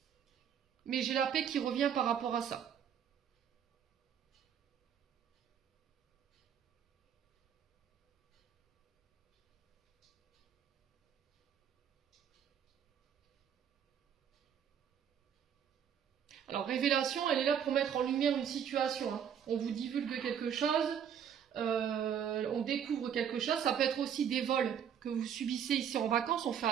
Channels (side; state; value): left; quieter; 8.5 dB